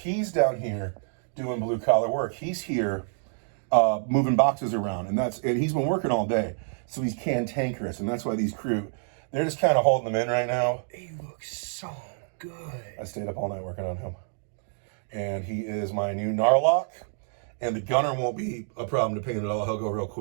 down here doing blue-collar work. He's here moving boxes around. And he's been working all day. So he's cantankerous. And that's why these Kroot, they're just kind of holding them in right now. He looks so good. I stayed up all night working on him. And he is my new Knarloc. And the gunner won't be a problem to paint at all. He'll go real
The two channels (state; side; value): silent; left; digital silence